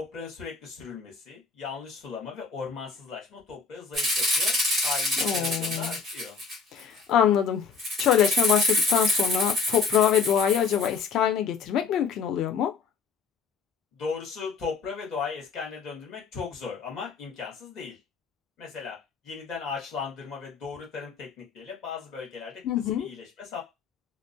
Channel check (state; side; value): quieter; right; 5.5 dB